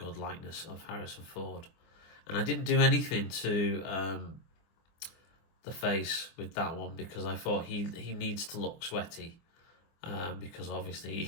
likeness of Harrison Ford. And I didn't do anything to the face with that one because I thought he needs to look sweaty because obviously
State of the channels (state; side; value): late; right; 24 ms